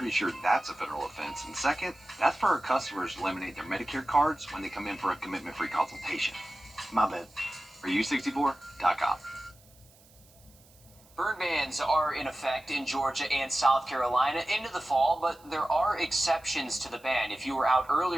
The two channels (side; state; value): right; noise; hiss, 28 dB below the sound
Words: sure that's a federal offense. And second, that's for our customers to laminate their Medicare cards when they come in for a commitment-free consultation. My bad. For U64.com. Burn bans are in effect in Georgia and South Carolina into the fall, but there are exceptions to the ban. If you were out